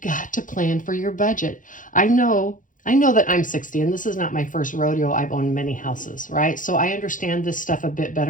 to plan for your budget. I know that I'm 60 and this is not my first rodeo. I've owned many houses, right? So I understand this stuff a bit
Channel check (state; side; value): late; right; 0.38 ms